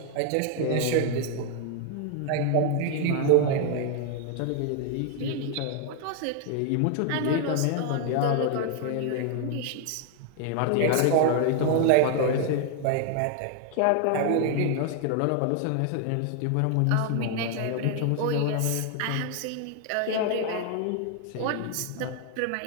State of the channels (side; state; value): both; different; correlation 0.00